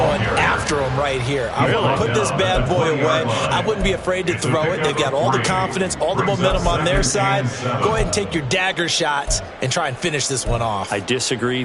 after them right here. I want to put this bad boy away. I wouldn't be afraid to throw it. They've got all the confidence, all the momentum on their side. Go ahead and take your dagger shots and try and finish this one off. I disagree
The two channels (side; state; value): both; identical; correlation 1.00